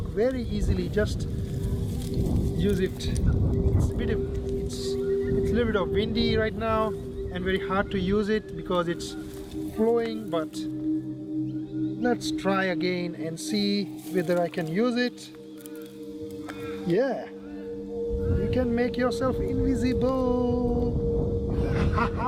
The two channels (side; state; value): both; identical; correlation 1.00